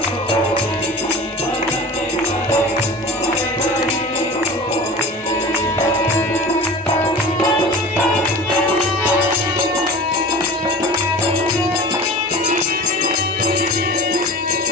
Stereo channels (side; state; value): both; normal; correlation 0.37